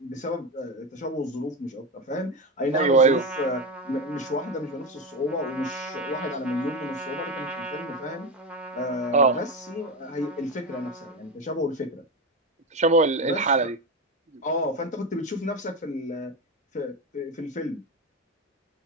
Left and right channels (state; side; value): normal; both; correlation 0.16